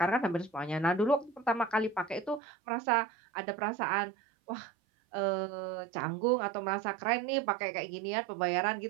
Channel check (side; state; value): left; drops out; at 2.4 s